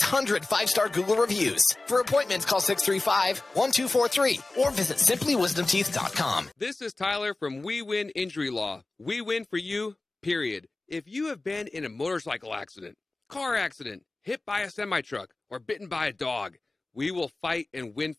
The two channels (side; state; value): right; quieter; 3.1 dB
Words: 5-star Google reviews. For appointments, call 635-1243 or visit simplywisdomteeth.com. This is Tyler from We Win Injury Law. We win for you, period. If you have been in a motorcycle accident, car accident, hit by a semi-truck, or bitten by a dog, we will fight and win